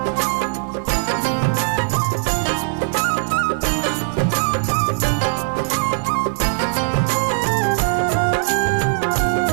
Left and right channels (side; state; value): left; silent; digital silence